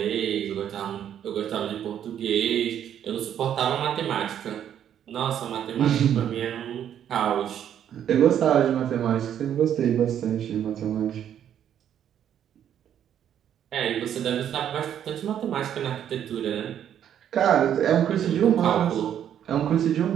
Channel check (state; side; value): quieter; left; 9.8 dB